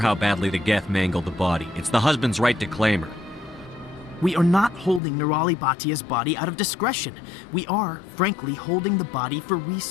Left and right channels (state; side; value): drops out; right; at 5.0 s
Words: badly the Geth mangled the body. It's the husband's right to claim her. We are not holding Nirali Bhatia's body out of discretion. We are, frankly, holding the body for